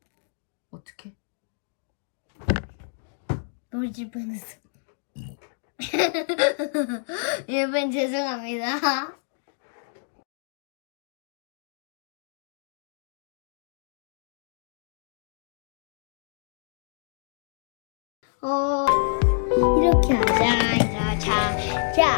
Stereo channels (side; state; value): right; silent; digital silence